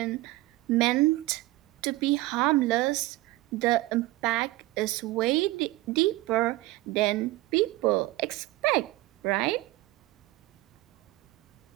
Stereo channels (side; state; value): left; quieter; 19.1 dB